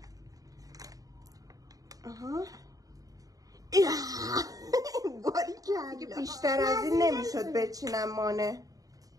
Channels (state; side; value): late; left; 0.17 ms